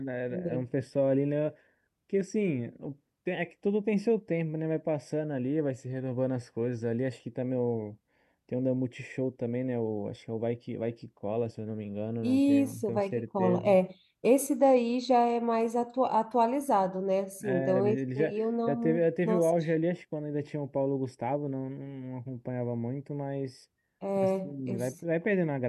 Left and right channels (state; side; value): identical; both; correlation 1.00